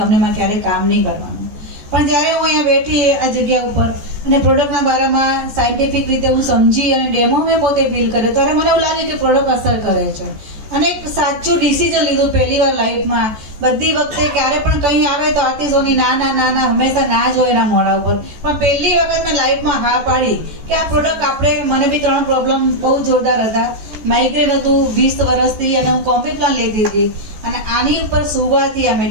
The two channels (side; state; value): left; late; 14 ms